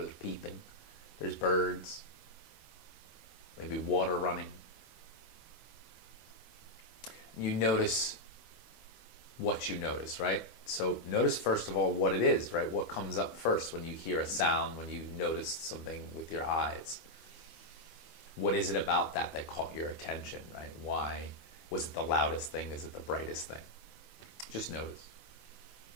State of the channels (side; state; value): right; late; 25 ms